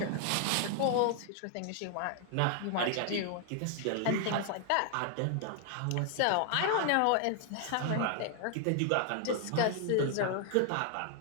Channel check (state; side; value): different; both; correlation 0.00